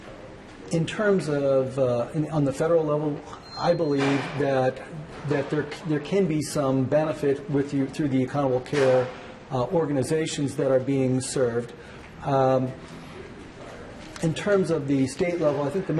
In terms of on the federal level, I believe that there can be some benefit through the accountable care organizations that are being served. In terms of the state level, I think the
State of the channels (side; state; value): both; identical; correlation 1.00